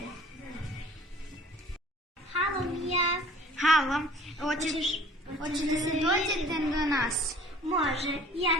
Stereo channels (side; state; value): both; normal; correlation 0.50